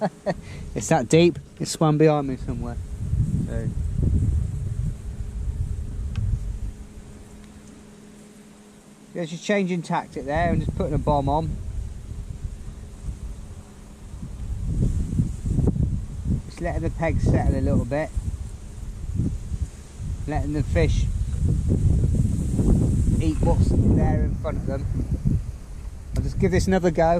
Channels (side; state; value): both; identical; correlation 1.00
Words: It's that deep, it's swum behind me somewhere. So there's just changing tactic there and just putting a bomb on. Just letting the peg settle a little bit. Letting the fish eat what's there in front of them. I'll just give this another